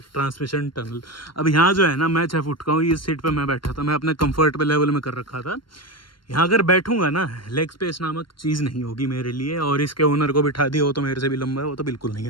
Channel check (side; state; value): right; late; 0.72 ms